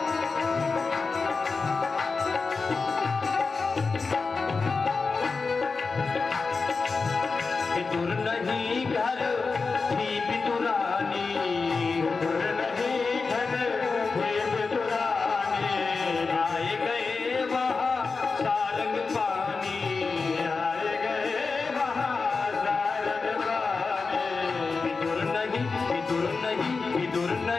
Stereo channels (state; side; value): quieter; right; 4.4 dB